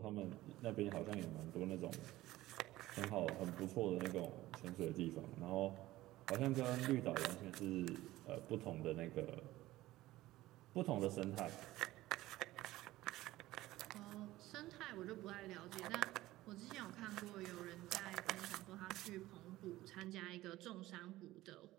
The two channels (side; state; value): left; quieter; 16.7 dB